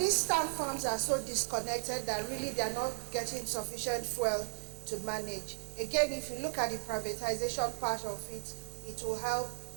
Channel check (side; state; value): left; silent; digital silence